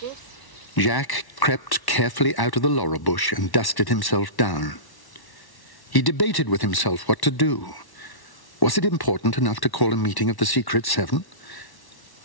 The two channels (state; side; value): late; right; 1.1 ms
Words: Jack crept carefully out of the laurel bush and dusted himself down. He debated with himself what to do. Was it important enough to call a meeting of the Secret 7?